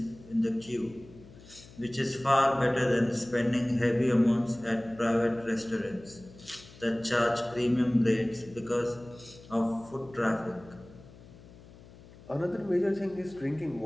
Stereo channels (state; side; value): noise; left; hum, 21 dB below the sound